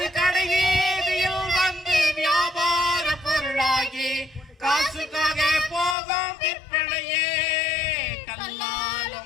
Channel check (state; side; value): drops out; right; at 6.0 s